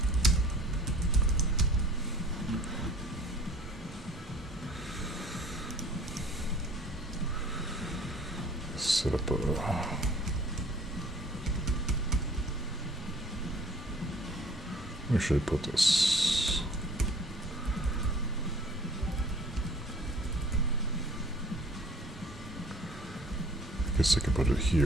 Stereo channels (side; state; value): both; normal; correlation 0.52